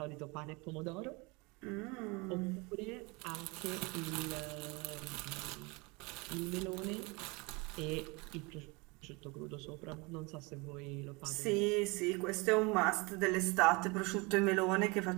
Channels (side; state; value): left; quieter; 27.1 dB